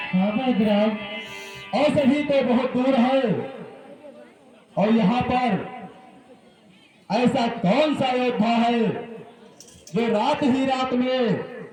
हाँ वैद्यराज। औषधि तो बहुत दूर है, और यहाँ पर ऐसा कौन सा योद्धा है जो रात ही रात में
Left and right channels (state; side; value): identical; both; correlation 1.00